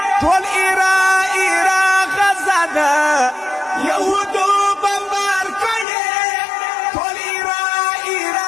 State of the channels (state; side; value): drops out; right; at 5.9 s